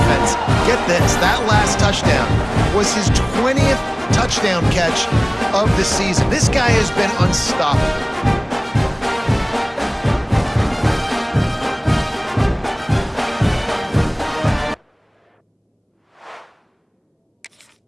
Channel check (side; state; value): both; identical; correlation 1.00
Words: Get this, that last touchdown was his 20th touchdown catch of the season. This guy has been unstoppable.